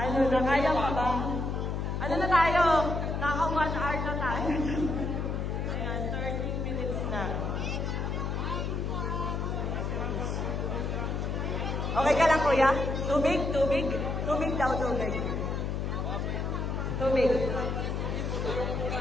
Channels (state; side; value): noise; left; hum, 1 dB below the sound